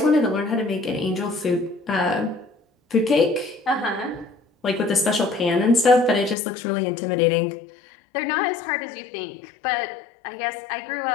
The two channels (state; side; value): drops out; right; at 6.4 s